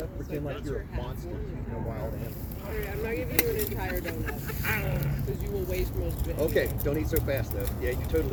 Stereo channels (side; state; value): both; identical; correlation 1.00